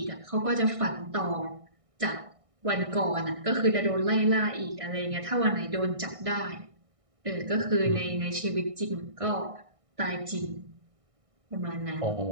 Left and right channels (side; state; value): left; late; 1.6 ms